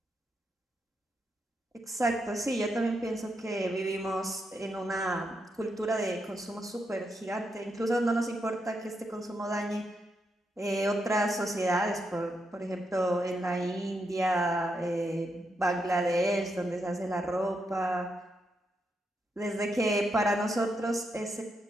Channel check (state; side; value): normal; both; correlation 0.82